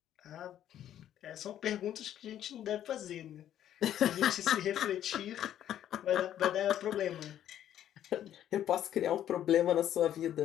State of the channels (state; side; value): quieter; right; 11.1 dB